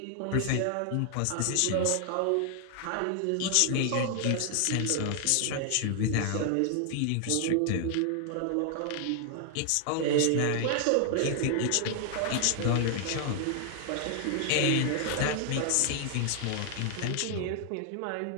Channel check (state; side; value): different; both; correlation 0.00